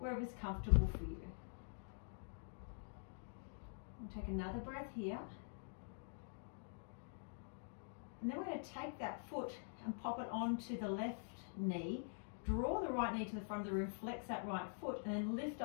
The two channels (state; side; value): silent; right; digital silence